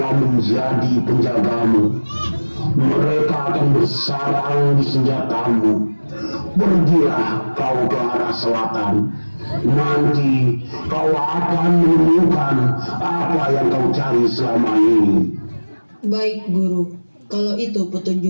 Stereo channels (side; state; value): both; inverted; correlation -1.00